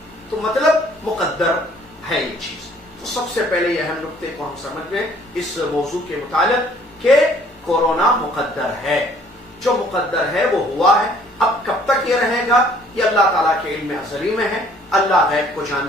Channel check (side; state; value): both; normal; correlation 0.58